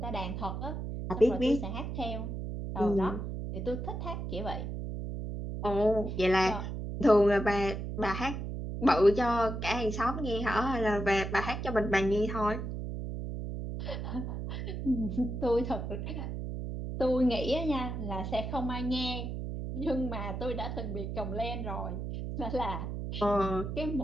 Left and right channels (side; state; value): right; noise; hum, 5 dB below the sound